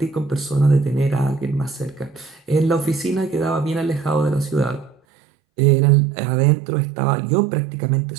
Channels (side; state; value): left; drops out; at 5.0 s